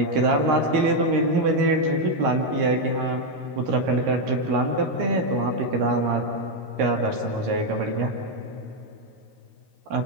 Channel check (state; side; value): late; left; 13 ms